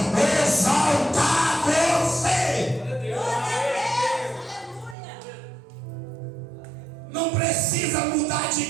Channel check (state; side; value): drops out; left; at 5.0 s